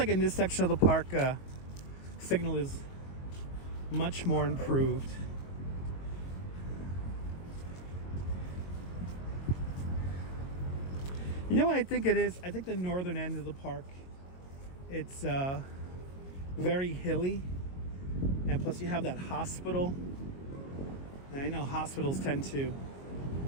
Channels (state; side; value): late; right; 22 ms